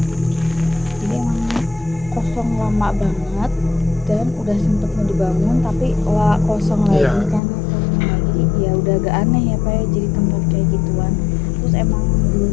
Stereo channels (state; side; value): drops out; right; at 7.4 s